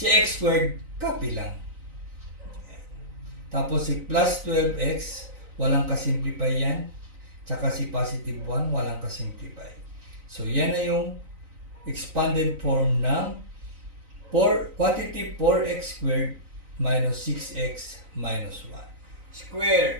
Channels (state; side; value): late; left; 3.9 ms